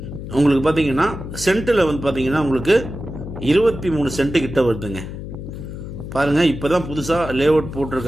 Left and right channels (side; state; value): left; noise; hum, 9 dB below the sound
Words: உங்களுக்கு பார்த்தீங்கன்னா சென்ட்டில் வந்து பார்த்தீங்கன்னா உங்களுக்கு 23 சென்ட்டு கிட்ட வருதுங்க. பாருங்கள், இப்போ தான் புதுசாக லே அவுட்